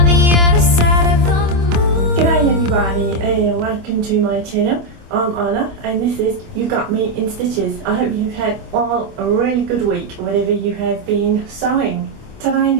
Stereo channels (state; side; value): late; left; 26 ms